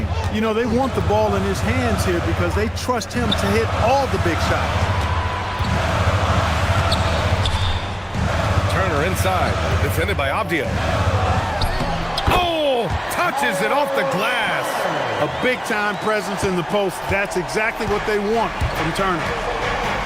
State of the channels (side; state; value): both; identical; correlation 1.00